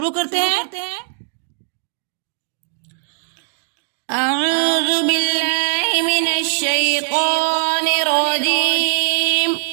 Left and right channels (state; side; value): silent; left; digital silence